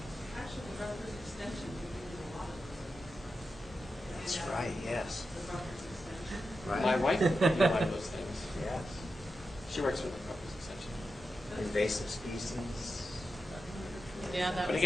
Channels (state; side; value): normal; both; correlation 0.90